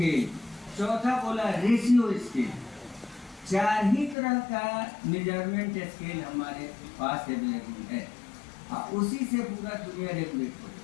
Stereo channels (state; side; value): drops out; right; at 4.2 s